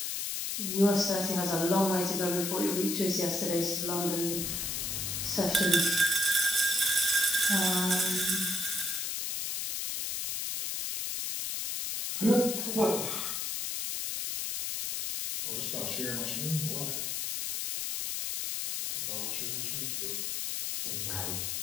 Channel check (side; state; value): left; noise; hiss, 2 dB below the sound